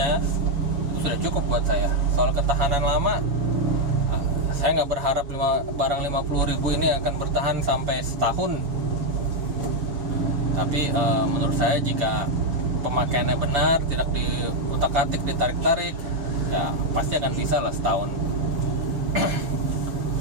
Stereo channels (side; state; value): left; late; 7.2 ms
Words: sudah cukup buat saya. Soal ketahanan lama, saya nggak berharap barang 50.000 ini akan bertahan sampai setahun. Tapi menurut saya jika pemakaiannya benar, tidak diutak-atik, ditarik-tarik, ya pasti akan bisa lah setahun.